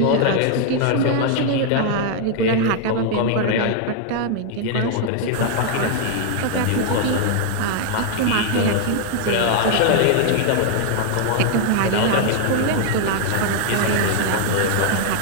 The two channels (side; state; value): both; different; correlation 0.00